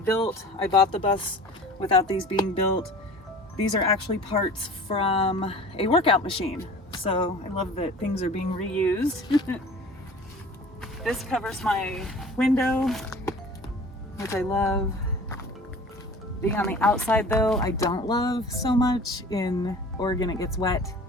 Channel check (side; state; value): both; normal; correlation 0.43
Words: I bought the bus without these being built. These are actually parts from a workout machine. So I love that things are being reused. This covers my window, which I love. Being on the outside though, I don't love so much. In Oregon it gets wet